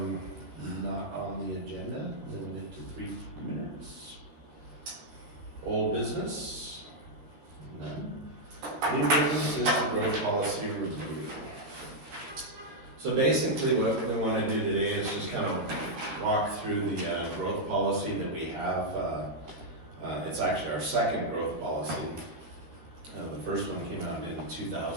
not on the agenda, limited to 3 minutes? Old business? None. New business is the growth policy review. So basically what we want to do today is just kind of walk through the growth policy that we have. It's actually our second growth policy. The first one came out in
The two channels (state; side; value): late; left; 13 ms